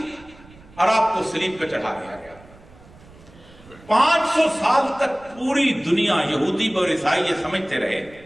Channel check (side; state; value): right; noise; rumble, 24 dB below the sound